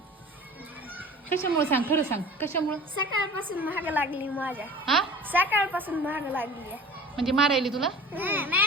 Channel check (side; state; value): both; normal; correlation 0.42